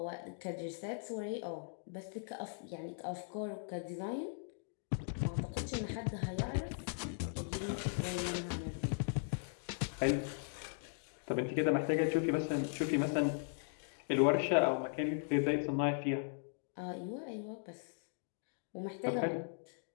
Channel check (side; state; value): right; silent; digital silence